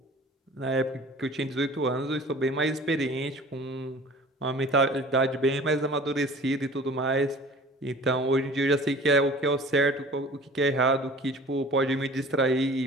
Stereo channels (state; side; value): normal; both; correlation 0.45